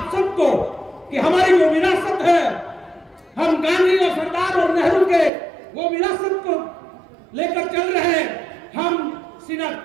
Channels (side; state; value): left; drops out; at 5.3 s